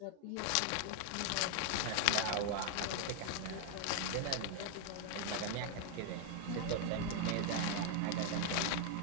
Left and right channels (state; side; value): different; both; correlation 0.00